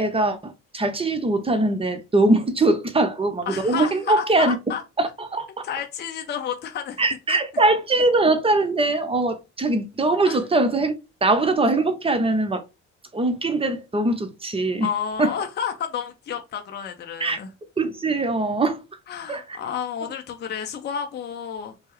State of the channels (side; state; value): both; normal; correlation 0.38